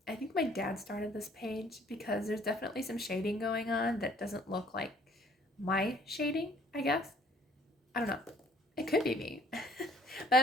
I think my dad started this page because there's definitely some shading going on that doesn't look like my shading, I guess. I don't know. It could be me. But I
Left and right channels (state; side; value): normal; both; correlation 0.59